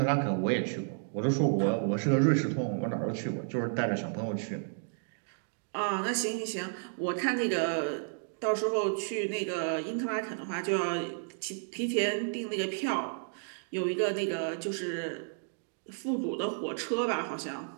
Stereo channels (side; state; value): left; silent; digital silence